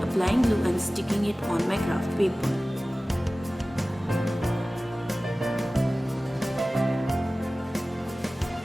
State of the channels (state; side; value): normal; both; correlation 0.97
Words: applying glue and sticking it on my craft paper.